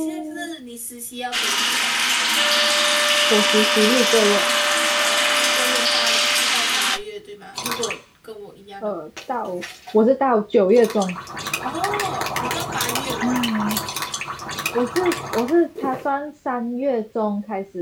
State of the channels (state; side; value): identical; both; correlation 1.00